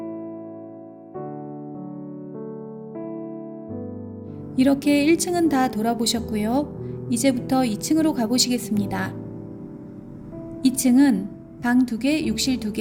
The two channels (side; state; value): both; identical; correlation 1.00